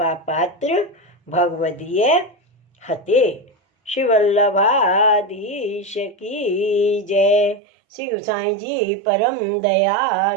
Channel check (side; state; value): left; drops out; at 7.6 s